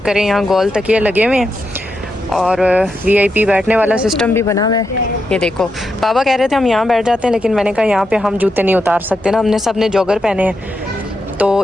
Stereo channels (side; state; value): both; normal; correlation 0.85